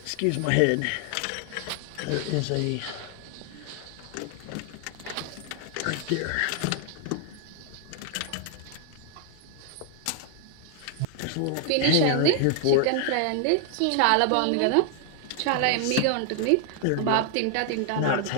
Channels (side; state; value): both; different; correlation 0.00